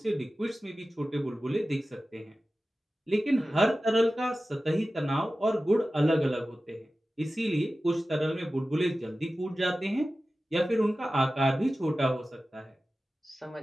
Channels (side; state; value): both; normal; correlation 0.95